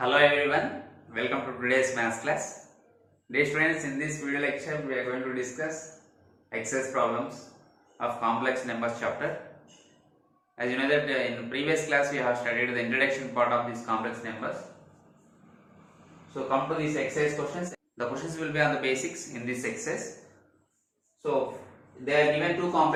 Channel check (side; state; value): both; identical; correlation 1.00